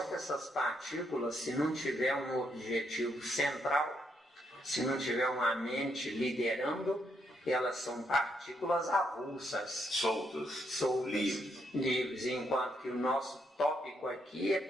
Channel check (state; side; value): normal; both; correlation 0.76